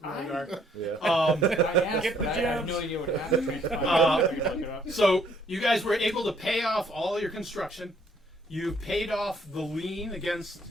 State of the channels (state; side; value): normal; both; correlation 0.65